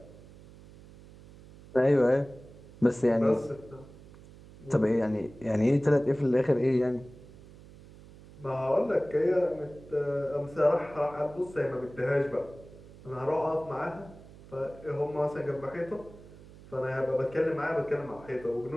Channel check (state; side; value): noise; right; hum, 20 dB below the sound